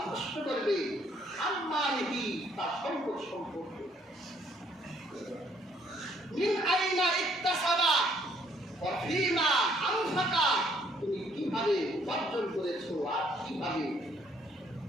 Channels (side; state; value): both; normal; correlation 0.66